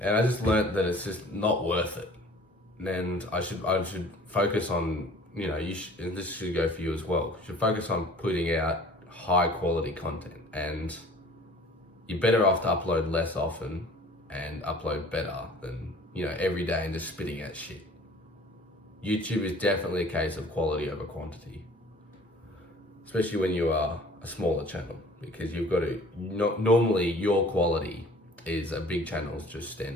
I just learned that it's just not worth it. And I should focus on, and this should go for you as well. You should focus on putting out high quality content, and you're better off to upload less often and upload better than, every day and just spitting out shit. YouTube is definitely a case of quality over quantity, especially when you are a smaller channel, because you've got to, normally your quality is a big channel's just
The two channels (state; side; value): normal; both; correlation 0.49